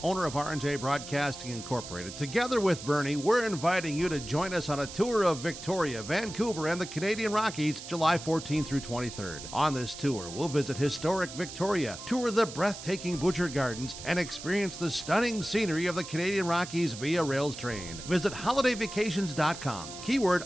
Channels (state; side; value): noise; right; hiss, 12 dB below the sound